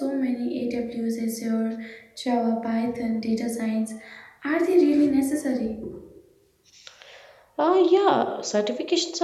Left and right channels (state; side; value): identical; both; correlation 1.00